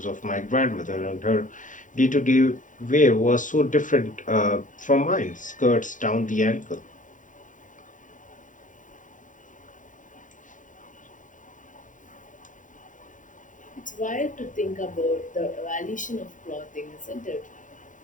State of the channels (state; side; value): late; right; 0.37 ms